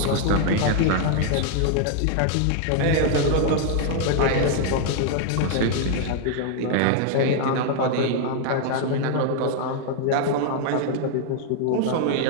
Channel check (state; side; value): different; both; correlation 0.00